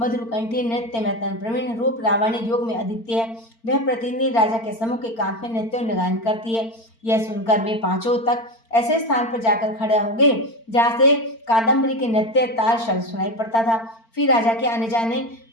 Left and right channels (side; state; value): right; late; 4.4 ms